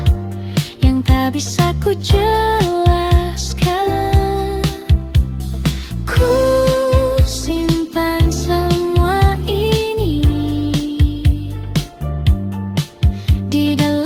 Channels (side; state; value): both; identical; correlation 1.00